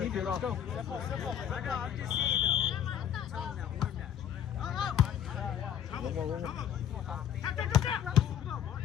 you. Let's go. One more.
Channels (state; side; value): quieter; right; 9.7 dB